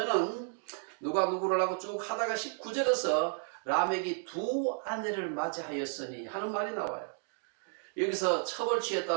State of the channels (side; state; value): left; silent; 56 dB below the other